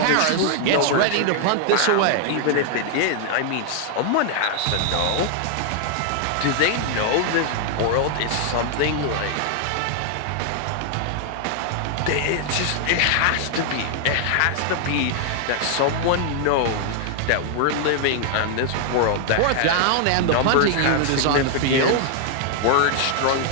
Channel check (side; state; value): both; different; correlation 0.00